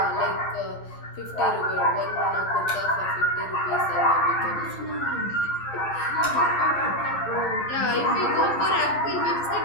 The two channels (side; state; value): right; late; 11 ms